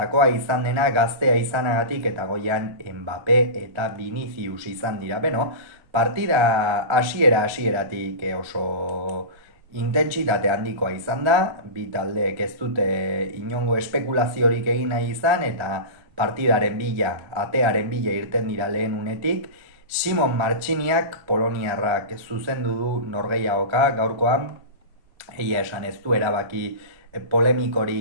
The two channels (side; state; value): left; late; 1.4 ms